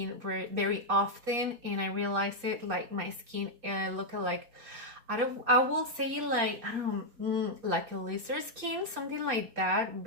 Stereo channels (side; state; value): left; late; 4.3 ms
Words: very often, and I realized it, like my skin looked like, I will say like, I don't know, like a lizard skin, something like that,